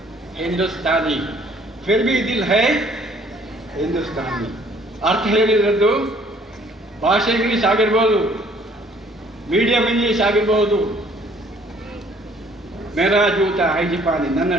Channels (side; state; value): both; normal; correlation 0.59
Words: ಹಿಂದೂಸ್ತಾನಿ, ಫಿರ್ ಭಿ ದಿಲ್ ಹೈ ಹಿಂದೂಸ್ತಾನಿ. ಅರ್ಥ ಹೇಳಿರೋದು, ಭಾಷೆ ಇಂಗ್ಲೀಷ್ ಆಗಿರ್ಬೋದು, ಮೀಡಿಯಂ ಇಂಗ್ಲೀಷ್ ಆಗಿರ್ಬೋದು. ಮೇರಾ ಜೂತ ಹೈ ಜಪಾನಿ, ನನ್ನ